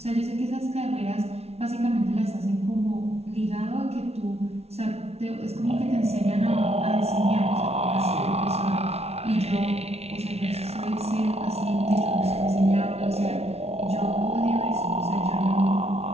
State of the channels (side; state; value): left; late; 0.31 ms